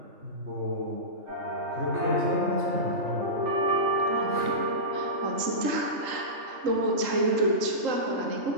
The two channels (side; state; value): left; late; 3.7 ms